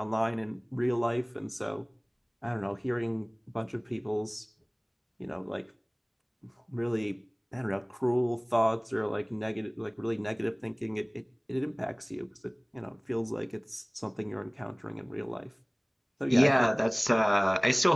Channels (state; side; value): identical; both; correlation 1.00